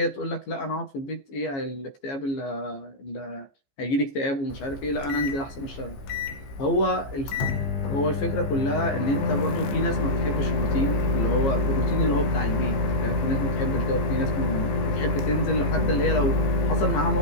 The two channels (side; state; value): right; late; 15 ms